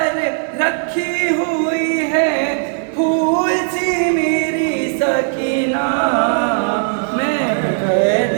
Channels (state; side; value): silent; left; 68 dB below the other